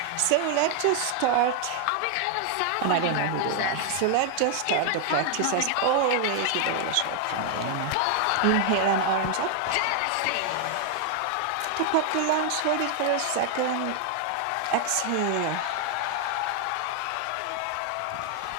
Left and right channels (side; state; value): both; different; correlation 0.00